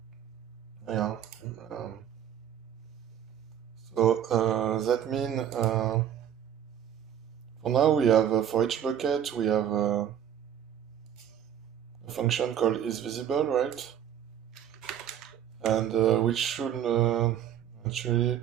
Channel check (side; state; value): left; quieter; 9.7 dB